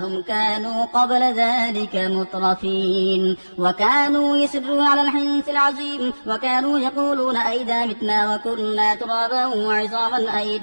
كانوا قبل ذلك مترفين وكانوا يسرون على الحنث العظيم وكانوا يقولون أئذا متنا وكنا ترابا وعظاما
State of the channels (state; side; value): inverted; both; correlation -1.00